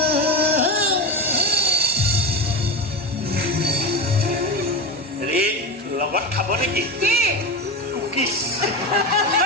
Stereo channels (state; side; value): normal; both; correlation 0.21